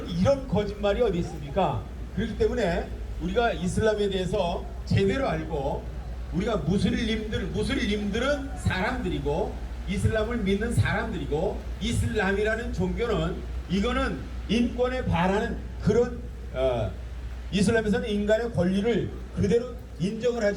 이런 거짓말이 어디 있습니까? 그렇기 때문에 우리가 이슬람에 대해서 제대로 알고, 우리가 무슬림들은 사람들이고 이슬람을 믿는 사람들이고, 이슬람이라는 종교는 이거는 인권에 반하는 그런 이슬람에서는 인간의 권리를 그대로 인정을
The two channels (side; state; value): both; identical; correlation 1.00